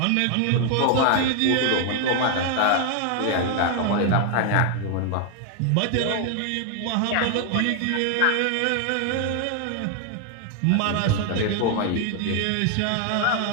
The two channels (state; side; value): different; both; correlation 0.00